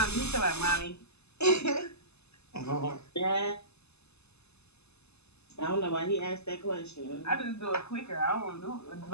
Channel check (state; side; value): late; right; 0.80 ms